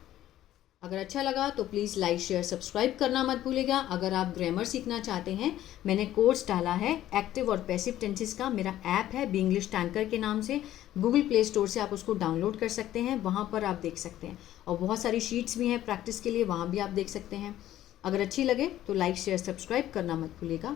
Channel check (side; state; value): right; quieter; 13.2 dB